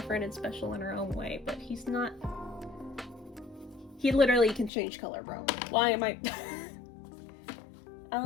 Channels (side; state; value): right; drops out; at 4.7 s